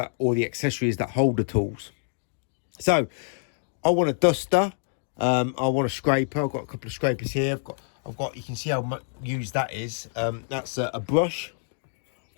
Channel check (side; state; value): right; silent; digital silence